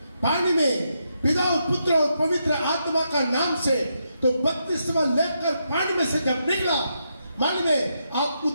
पानी में पिता और पुत्र और पवित्र आत्मा का नाम से तो बपतिस्मा लेकर पानी में से जब निकला, मन में आप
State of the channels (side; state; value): both; inverted; correlation -0.82